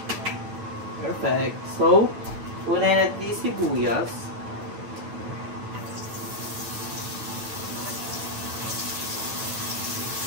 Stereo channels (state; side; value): late; left; 9.1 ms